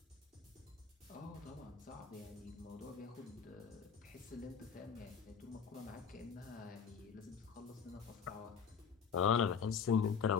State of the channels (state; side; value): quieter; right; 6.6 dB